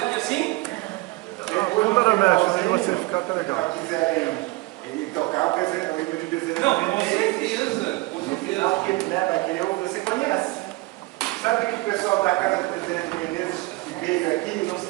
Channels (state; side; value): quieter; left; 22.0 dB